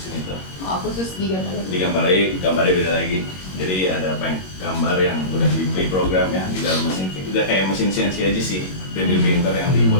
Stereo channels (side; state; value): right; late; 21 ms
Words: itu. Oh, khusus di gambar lagi. Digambar lagi, gambarnya beda lagi. Jadi ada gambar yang udah di pre-program ya di dalam mesin. Udah kayak mesin CNC aja sih, 3D printer yang